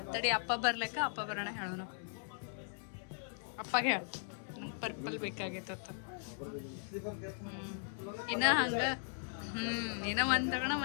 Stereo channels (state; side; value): silent; right; digital silence